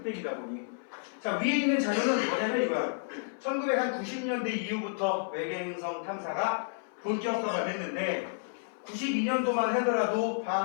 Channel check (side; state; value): right; silent; 57 dB below the other